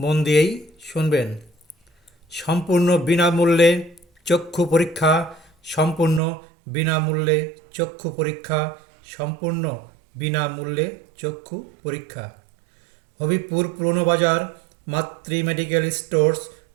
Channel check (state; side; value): drops out; left; at 6.2 s